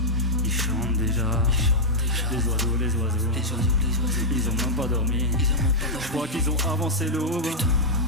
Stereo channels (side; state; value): both; normal; correlation -0.05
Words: Ils chantent déjà. Les oiseaux, ils ont même pas dormi. Je crois qu'ils ont avancé l'aube.